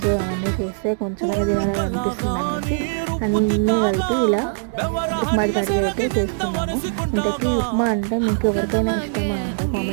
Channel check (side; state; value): left; silent; 65 dB below the other